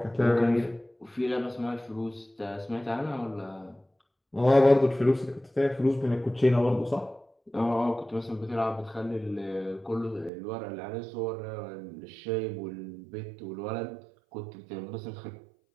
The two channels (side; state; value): left; drops out; at 10.3 s